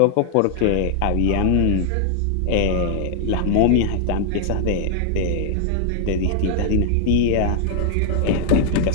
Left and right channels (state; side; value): different; both; correlation 0.00